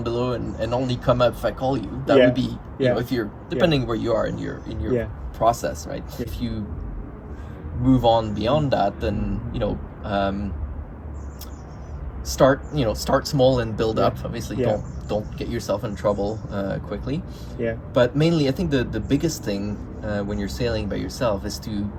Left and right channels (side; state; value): both; identical; correlation 1.00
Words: below and only come up if I call you. That would be, if you're, depending where you are in your process, right? If you move on beyond that, then, start small and build up. Obviously, don't get yourself in trouble quickly. But mainly, I think the biggest thing when you're sailing by yourself is you